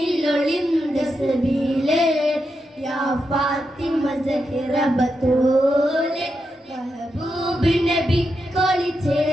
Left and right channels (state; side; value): normal; both; correlation 0.86